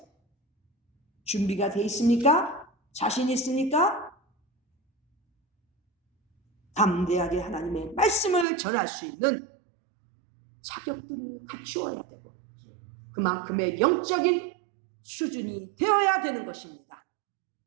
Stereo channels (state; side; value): drops out; left; at 8.5 s